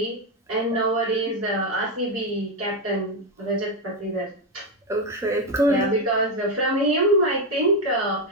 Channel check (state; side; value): normal; both; correlation 0.07